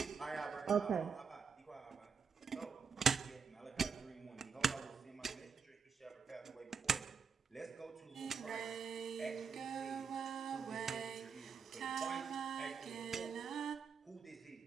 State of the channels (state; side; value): quieter; left; 6.0 dB